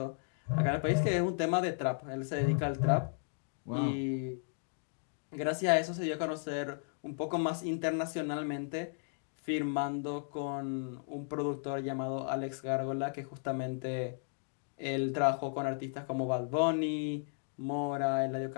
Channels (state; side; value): silent; right; digital silence